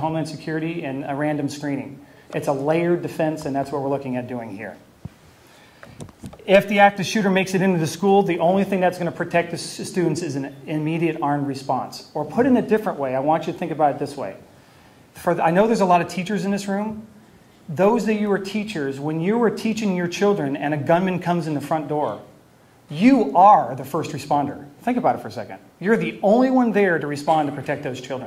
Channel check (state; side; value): identical; both; correlation 1.00